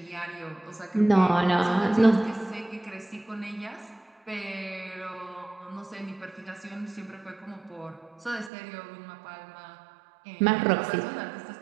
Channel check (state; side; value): drops out; left; at 8.5 s